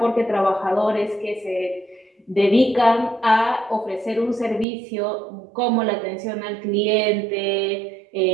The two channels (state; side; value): drops out; left; at 4.7 s